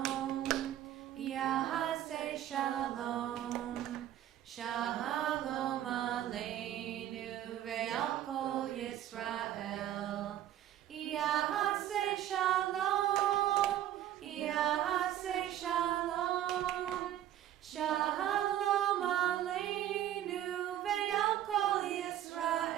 Yahaseh Shalom. Shalom Aleinu ve'al kol Yisrael. Yahaseh Shalom, Yahaseh Shalom. Shalom Aleinu ve'al kol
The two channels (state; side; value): quieter; left; 12.1 dB